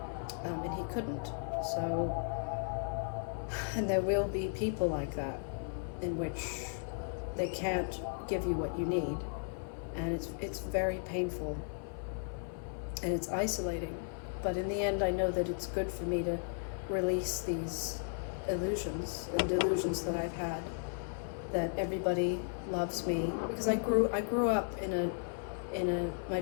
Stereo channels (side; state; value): right; silent; 54 dB below the other